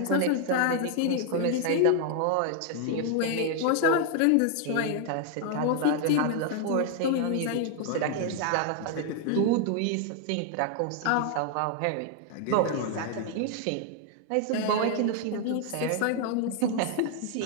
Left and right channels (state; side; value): different; both; correlation 0.00